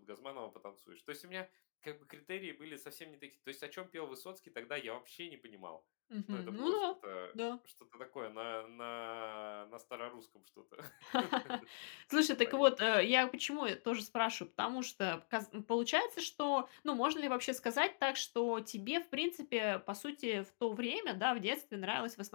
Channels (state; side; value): silent; right; digital silence